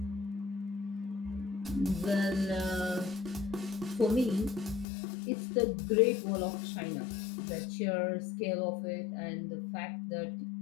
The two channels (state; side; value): drops out; right; at 4.9 s